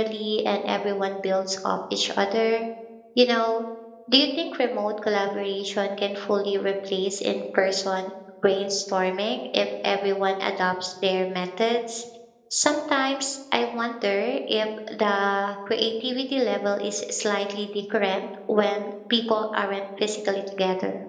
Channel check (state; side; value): identical; both; correlation 1.00